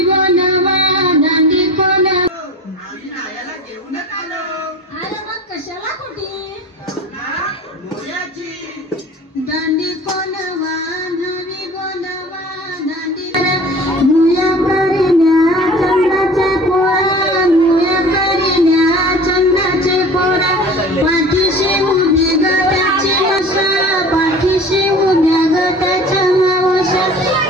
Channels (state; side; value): normal; both; correlation 0.41